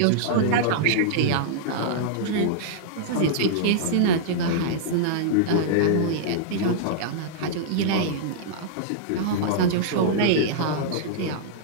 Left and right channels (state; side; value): different; both; correlation -0.02